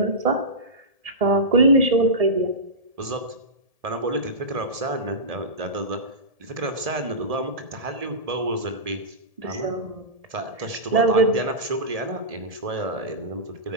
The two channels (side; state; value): left; late; 1.7 ms